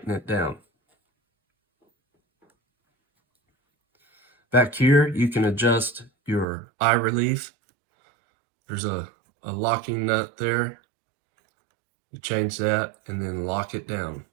it down. Back here, you can adjust your eye relief. There's a locking nut there. You change that and then lock it down.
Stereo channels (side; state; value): left; drops out; at 6.5 s